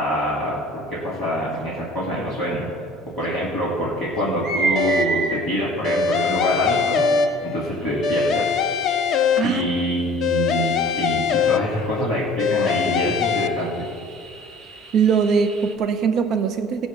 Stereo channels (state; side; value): normal; both; correlation 0.48